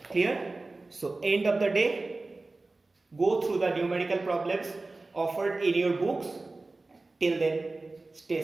Clear? So end of the day, go through the numerical problems offered in your books. Till then,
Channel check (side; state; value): left; quieter; 3.3 dB